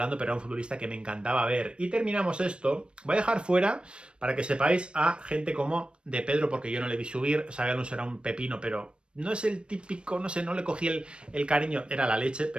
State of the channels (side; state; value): left; late; 0.057 ms